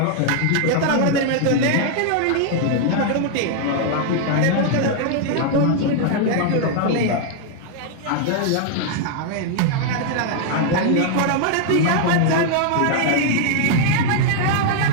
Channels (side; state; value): both; different; correlation 0.00